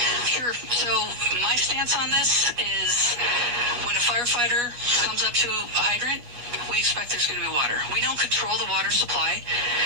Sure. So my stance on this is when a firefighter comes up to a hydrant, we expect there's going to be water. We don't control the water supply.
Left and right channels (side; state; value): left; late; 8.4 ms